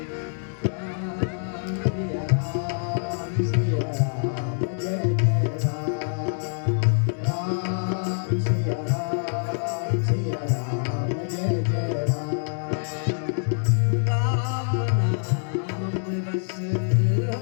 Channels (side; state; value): right; silent; 61 dB below the other